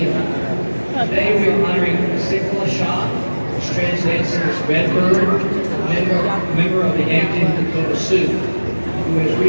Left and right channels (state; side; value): inverted; both; correlation -1.00